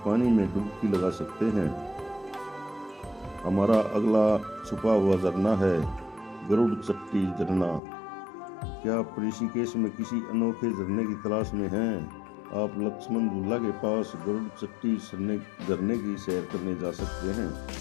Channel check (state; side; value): drops out; right; at 7.8 s